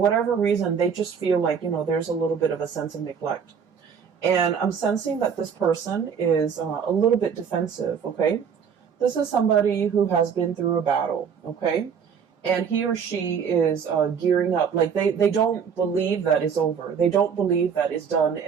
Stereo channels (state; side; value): quieter; left; 6.9 dB